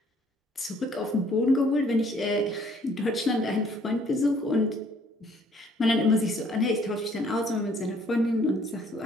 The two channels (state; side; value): normal; both; correlation 0.61